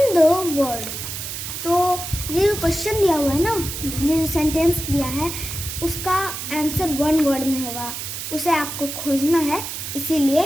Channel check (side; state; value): right; noise; hiss, 6 dB below the sound